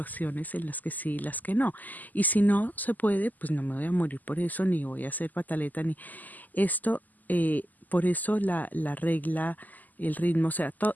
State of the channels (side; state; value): right; late; 0.083 ms